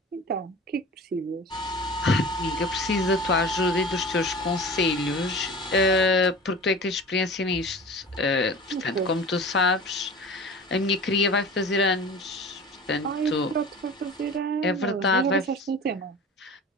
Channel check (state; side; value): normal; both; correlation 0.37